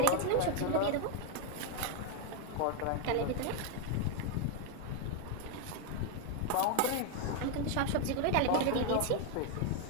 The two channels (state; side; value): different; both; correlation 0.01